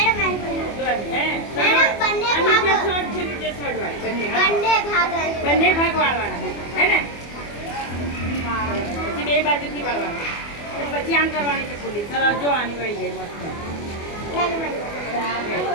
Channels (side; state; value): right; late; 24 ms